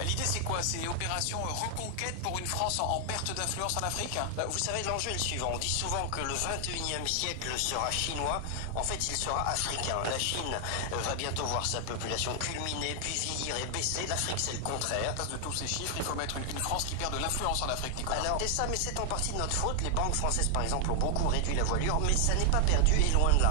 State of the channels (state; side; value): different; both; correlation 0.00